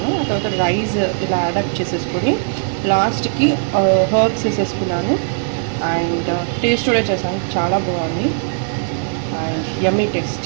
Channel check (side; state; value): left; silent; digital silence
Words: ఆ తర్వాత రైస్ ఇలా యాడప్ చేసేసుకొని లాస్ట్కి హర్బ్స్ వేసేసుకున్నాను. అండ్ టేస్ట్ కూడా చేశాను, చాలా బాగుంది అండ్ యమ్మీ